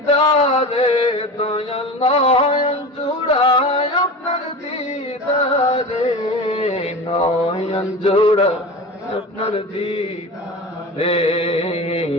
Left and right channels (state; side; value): normal; both; correlation 0.31